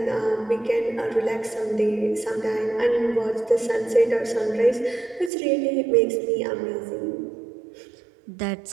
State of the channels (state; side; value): drops out; left; at 5.3 s